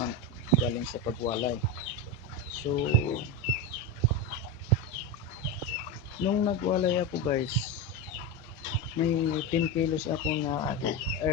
galing sa pagwalay. So, nung nagwalay ako guys, may 10 kilos ako na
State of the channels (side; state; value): both; normal; correlation 0.15